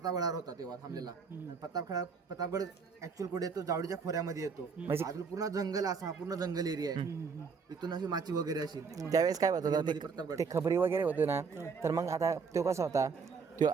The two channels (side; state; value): left; quieter; 5.4 dB